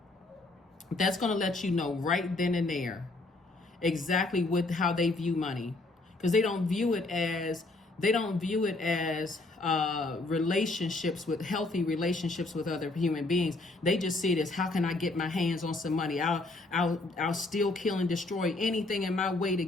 That's going to let you know right then and there exactly how they view money, because they don't view it as healthy relationships with other human beings. They just see it as, how can I get my hands on some money? I'll steal, kill, and destroy anything in my way to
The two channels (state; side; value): quieter; right; 3.0 dB